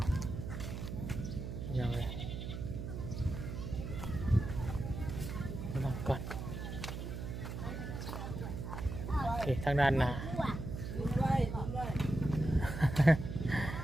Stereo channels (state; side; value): noise; right; hum, 6 dB below the sound